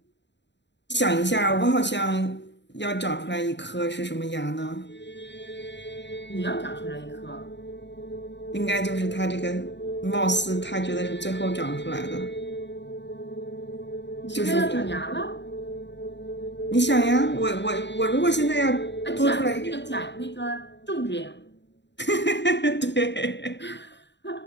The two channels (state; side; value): late; right; 0.52 ms